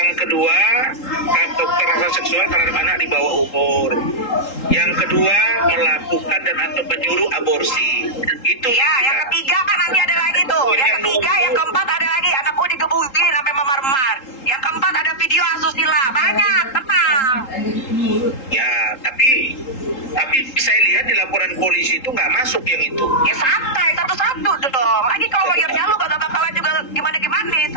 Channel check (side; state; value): right; late; 3.8 ms